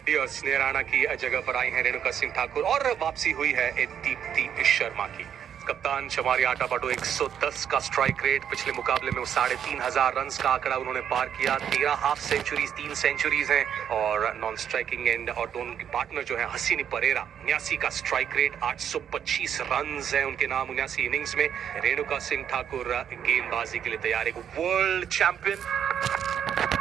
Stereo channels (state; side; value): quieter; left; 8.8 dB